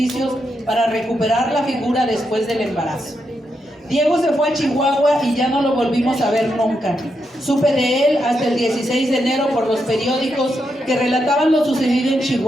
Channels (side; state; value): both; normal; correlation 0.83